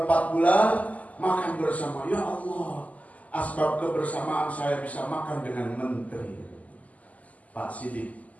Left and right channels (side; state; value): right; late; 0.073 ms